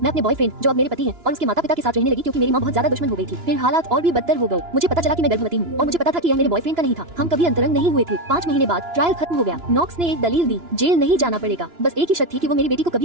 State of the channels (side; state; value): left; late; 2.9 ms